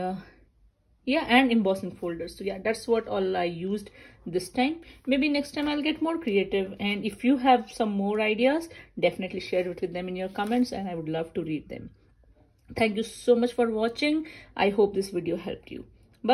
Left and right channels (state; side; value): identical; both; correlation 1.00